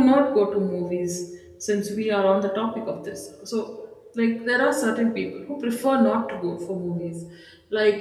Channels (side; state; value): both; identical; correlation 1.00